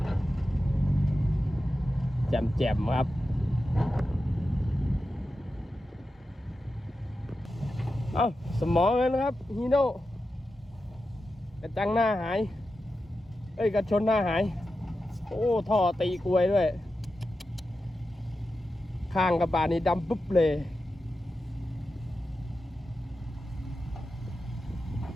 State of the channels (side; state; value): both; normal; correlation 0.91